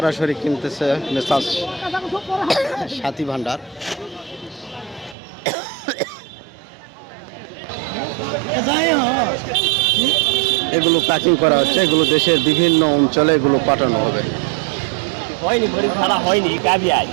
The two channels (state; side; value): drops out; left; at 5.2 s